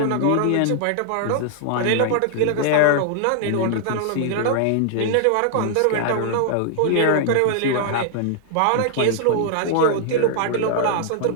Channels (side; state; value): both; different; correlation -0.01